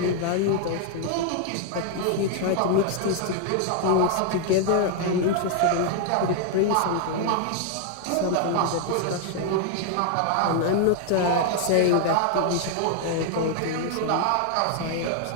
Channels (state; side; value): different; both; correlation 0.00